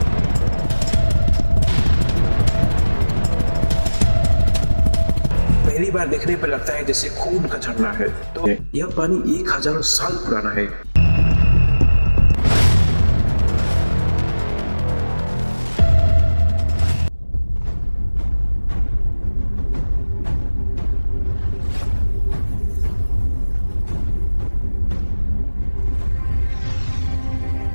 पहली बार देखने पर लगता है जैसे खून का झरना है। तो यह पानी 1000 साल पुराना है।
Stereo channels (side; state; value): both; inverted; correlation -1.00